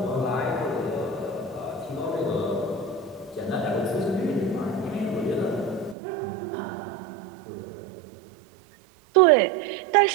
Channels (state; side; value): drops out; left; at 6.0 s